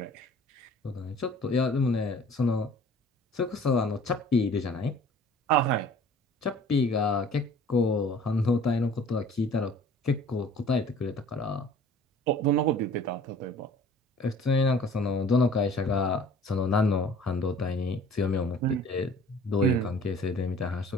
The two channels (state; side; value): normal; both; correlation 0.49